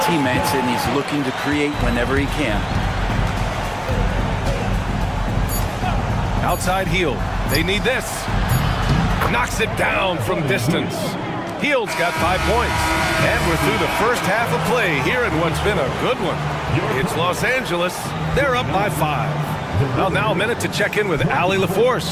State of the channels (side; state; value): both; identical; correlation 1.00